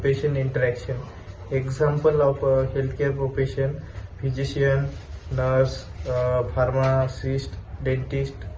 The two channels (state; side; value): identical; both; correlation 1.00